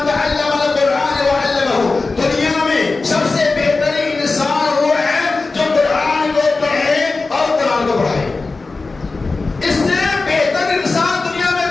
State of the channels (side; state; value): right; quieter; 3.8 dB